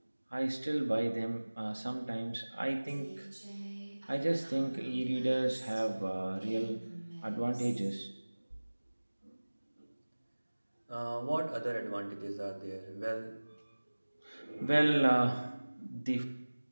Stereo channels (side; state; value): both; inverted; correlation -1.00